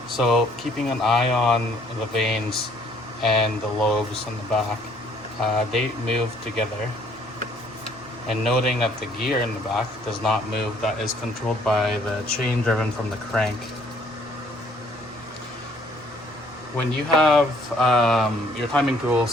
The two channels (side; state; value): both; normal; correlation 0.63